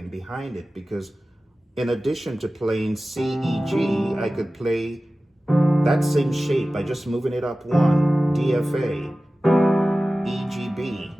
behind it, because in addition to playing C, E, G, I could play that same shape by just moving it up 1, D, F, A, E, G, B,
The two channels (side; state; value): both; normal; correlation 0.96